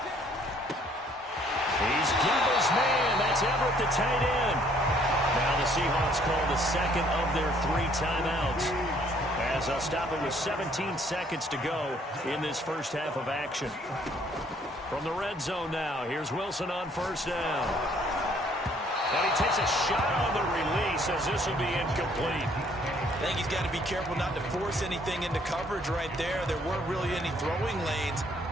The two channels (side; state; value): both; normal; correlation 0.62